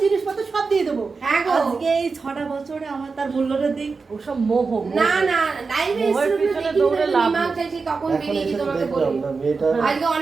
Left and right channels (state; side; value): quieter; left; 4.5 dB